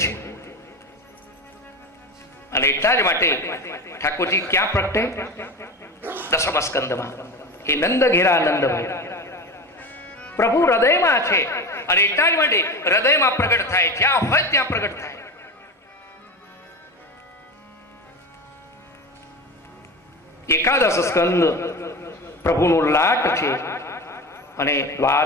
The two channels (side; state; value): both; normal; correlation 0.26